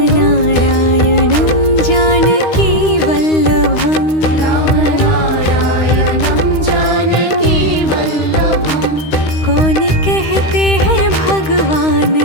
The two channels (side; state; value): right; late; 13 ms